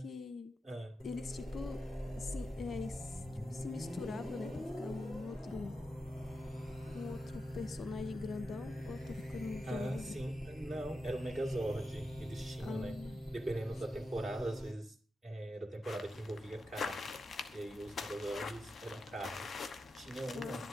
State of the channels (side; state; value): both; normal; correlation 0.89